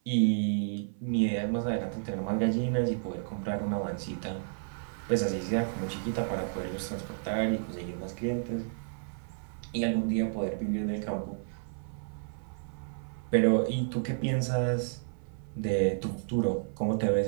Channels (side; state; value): left; silent; 55 dB below the other